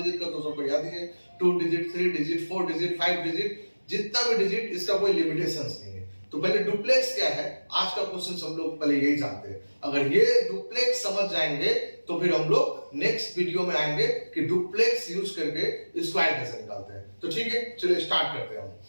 का तो सबको याद ही है, 2 डिजिट, 3 डिजिट, 4 डिजिट, 5 डिजिट, जितना भी डिजिट इसका कोई लिमिटेशंस नहीं है। तो पहले डुप्लेक्स क्या है, आज का क्वेश्चन हम लोग पहले यही जानते हैं। अगर ये डुप्लेक्स समझ जाएंगे तो फिर हम लोग नेक्स्ट वीडियो में आएंगे कि डुप्लेक्स यूज करके स्क्वायर कैसे निकालते हैं। तो ठीक है, चलिए स्टार्ट करते हैं हम।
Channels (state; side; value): inverted; both; correlation -1.00